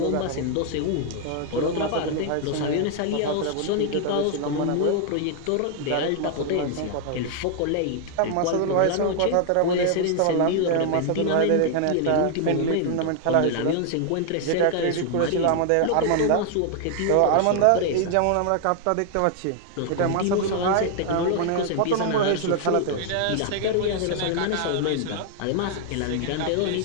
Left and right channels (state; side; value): different; both; correlation 0.00